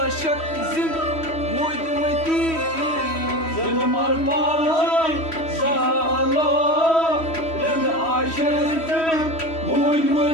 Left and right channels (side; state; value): right; late; 3.1 ms